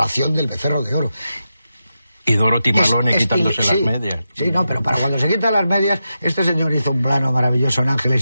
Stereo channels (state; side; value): inverted; both; correlation -0.89